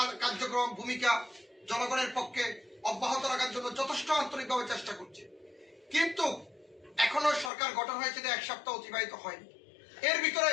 কার্যক্রম ভূমিকা জনগণের পক্ষে অব্যাহত রাখার জন্য যথেষ্ট আন্তরিকভাবে চেষ্টা করছে। কিন্তু এখনো সরকার গঠন হয়েছে 1 সপ্তাহ অতিবাহিত হয়নি। এর ভিতরে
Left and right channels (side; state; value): right; drops out; at 7.5 s